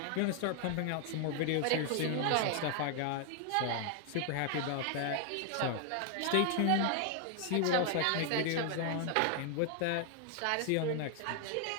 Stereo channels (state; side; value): different; both; correlation 0.00